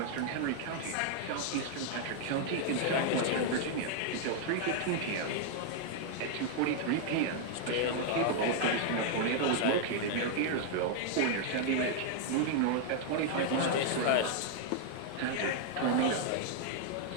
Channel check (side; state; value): both; different; correlation 0.00